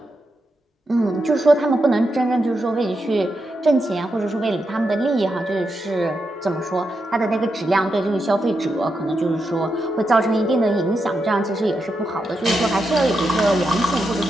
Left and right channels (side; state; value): both; normal; correlation 0.85